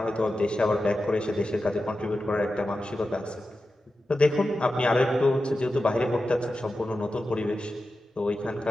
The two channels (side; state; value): both; normal; correlation 0.92